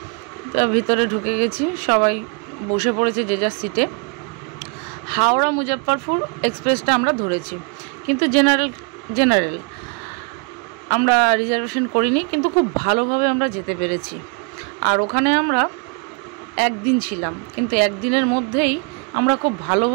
তো ভিতরে ঢুকে গেছি, সবাই বসে পড়েছে যে যার সিটে। হাওড়া মুজফ্ফরপুর এক্সপ্রেসটা আমরা ধরেছি, কিন্তু জেনারেল আমরা রিজার্ভেশন করিনি, কিন্তু খুব ভালোভাবে আমরা যেতে পেরেছি। আর ওখানে আমরা একদিন ছিলাম, কিন্তু একদিনের মধ্যেই আমরা খুব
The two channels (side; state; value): left; quieter; 35.1 dB